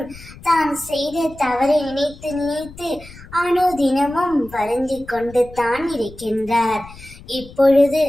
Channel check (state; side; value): noise; left; rumble, 19 dB below the sound